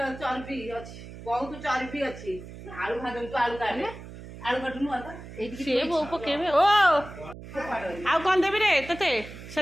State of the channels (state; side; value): noise; right; hum, 14 dB below the sound